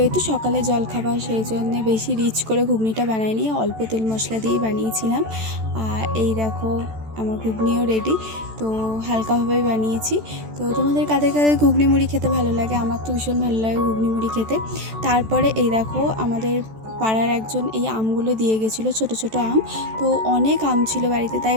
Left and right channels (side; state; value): left; late; 14 ms